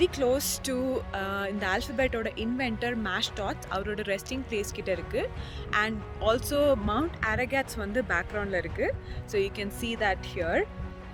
க்ளோஸ் டு இந்த ஆல்ஃபபெட்டோட இன்வென்டர் மேஷ்டாட்ஸ் அவரோட ரெஸ்டிங் பிளேஸ் கிட்ட இருக்குது. அண்ட் ஆல்சோ மவுண்ட் அரகாட்ஸ் வந்து பேக்ரவுண்டில் இருக்குது. So you can see that here.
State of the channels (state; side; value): identical; both; correlation 1.00